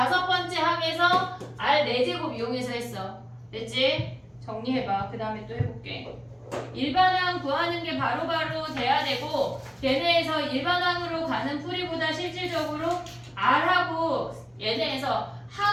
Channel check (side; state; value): both; identical; correlation 1.00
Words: 번째 항에서 R 4제곱 이용해서 했어. 됐지? 정리해봐. 그 다음에 또 해볼게. 일반항 구하는 게 바로바로 돼야 되고 얘네에서 일반항으로 가는 풀이보다 실질적으로 R하고 얘네에서